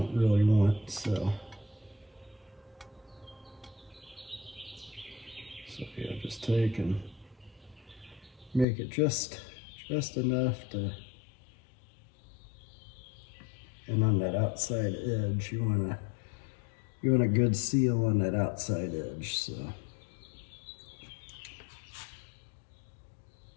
really want. So yeah, just take and make it just enough to, and on that outside edge, you want a good seal on that outside edge. So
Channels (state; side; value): drops out; right; at 8.7 s